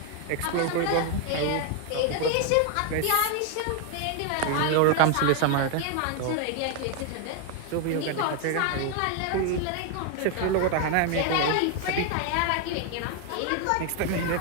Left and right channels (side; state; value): both; different; correlation 0.01